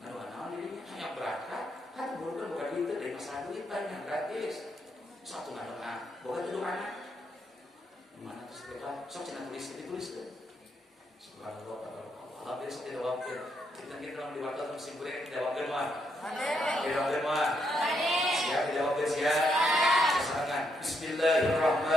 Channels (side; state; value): both; normal; correlation 0.77